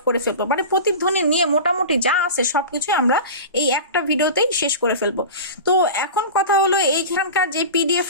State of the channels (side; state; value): both; inverted; correlation -0.31